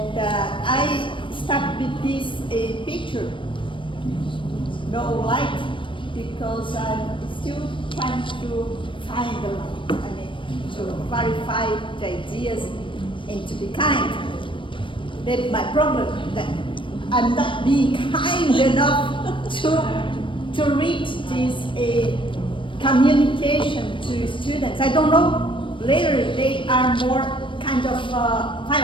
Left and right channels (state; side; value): late; right; 0.25 ms